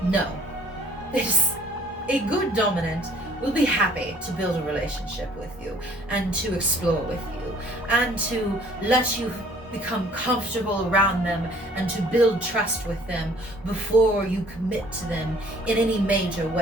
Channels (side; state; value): both; normal; correlation 0.56